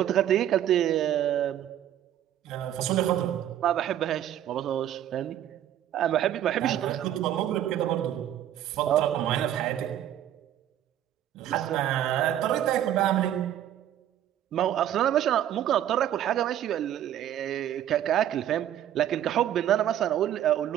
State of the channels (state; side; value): quieter; left; 11.3 dB